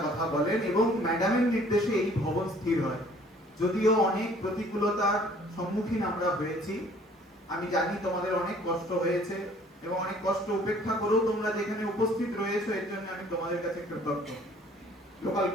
কথা বলেন এবং ম্যাডামের নির্দেশে এই ভবন স্থির হয়। যদিও অনেক প্রতিকূলতার সম্মুখীন আমরা হয়েছি, আমি জানি তোমাদের অনেক কষ্ট হয়েছে এবং অনেক কষ্ট উপেক্ষা করেও তোমরা যেখানে উপস্থিত রয়েছো, এর জন্য আমি তোমাদের কাছে কৃতজ্ঞ লোকাল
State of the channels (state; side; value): normal; both; correlation 0.56